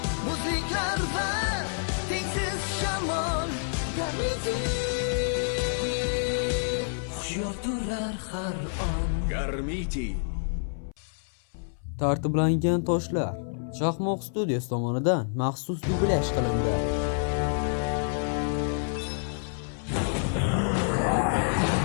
muzliklar va tengsiz shamol. Garmiti hushyor turlar har on. Garmiti Tartiblangan toshlar Chaqmoq studiyasi tomonidan maxsus dublyaj qilindi.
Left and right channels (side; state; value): right; silent; 59 dB below the other